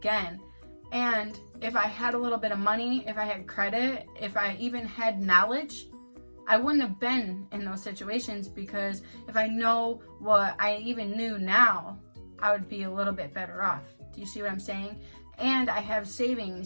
And if I had a little bit of money, if I had credit, if I even had knowledge, I wouldn't have been in those situations, because if I know what I even knew now, I would be a little bit better off. Do you see what I'm saying? And I have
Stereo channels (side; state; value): both; inverted; correlation -1.00